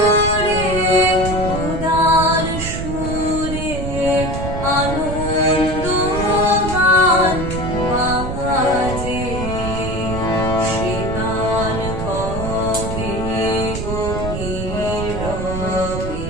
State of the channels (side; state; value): right; noise; rumble, 5 dB below the sound